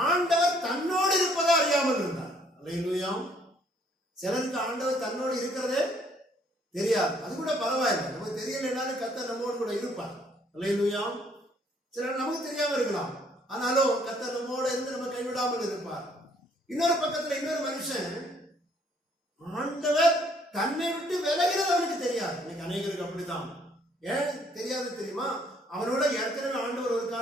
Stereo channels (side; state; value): both; normal; correlation 0.64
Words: ஆண்டவர் தன்னோடு இருப்பதை அறியாமல் இருந்தார். அல்லேலூயா. சிலருக்கு ஆண்டவர் தன்னோடு இருக்கிறதே தெரியாது. அது கூட பரவாயில்லை, நமக்கு தெரியலைனாலும் கர்த்தர் நம்மோடு கூட இருப்பார். அல்லேலூயா. சிலர் நமக்கு தெரியாம இருக்கலாம், ஆனாலும் கர்த்தர் நம்மோடு இருந்து நம்ம கைவிடாமல் இருப்பார். இன்னொரு பக்கத்துல இன்னொரு மனுஷன் ஆண்டவர் தன்னை விட்டு விலகிறது அவனுக்கு தெரியாது. இன்னைக்கு அநேகருக்கு அப்படித்தான். ஏன் தெரியாது தெரியுமா? அவனோட ஏற்கனவே ஆண்டவர் ஒரு